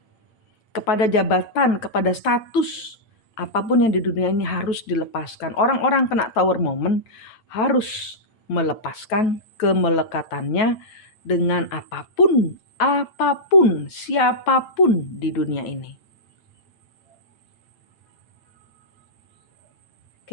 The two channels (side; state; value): right; late; 9.3 ms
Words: kepada jabatan, kepada status. Apapun yang di dunia ini harus dilepaskan. Orang-orang kena Tower Moment harus melepaskan kemelekatannya dengan apapun, siapapun di dunia ini.